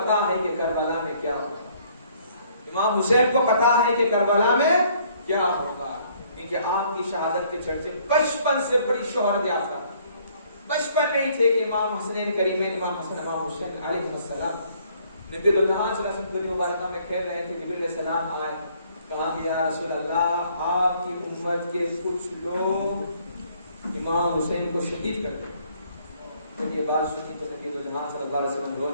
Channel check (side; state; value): both; inverted; correlation -0.62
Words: ہے کہ کربلا میں کیا ہوگا، امام حسین کو پتا ہے کہ کربلا میں کیا ہوگا، کیونکہ آپ کی شہادت کے چرچے بچپن سے بڑی شہرت یافتہ، بچپن میں ہی تھے کہ امام حسین کریمین، امام حسن امام حسین علیہ السلام نبی اللہ صلی اللہ علیہ وسلم مبارکہ میں کھیل رہے تھے، جبریل علیہ السلام آئے، کہا کہ یا رسول اللہ آپ کی امت کے کچھ لوگ امام حسین کو شہید کر دیں۔ جب یہ بات سنی تو نبی اللہ صلی اللہ علیہ وسلم